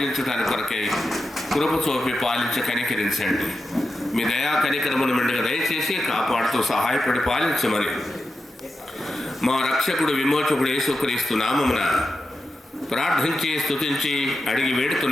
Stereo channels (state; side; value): normal; both; correlation 0.90